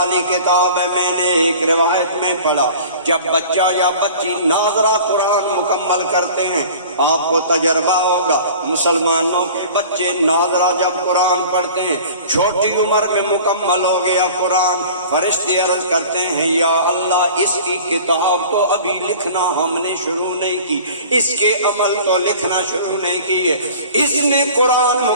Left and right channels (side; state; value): both; inverted; correlation -0.43